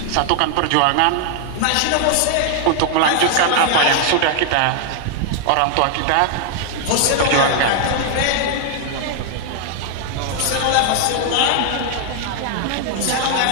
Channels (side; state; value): both; different; correlation 0.00